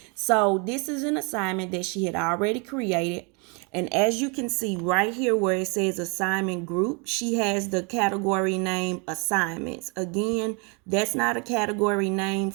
So this is an assignment that she had already created. And as you can see right here where it says assignment group, she has the category name assignments. Again, that's not a category name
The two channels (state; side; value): quieter; left; 33.3 dB